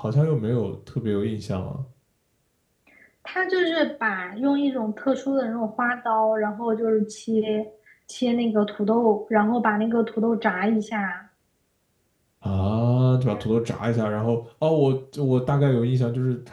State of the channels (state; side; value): identical; both; correlation 1.00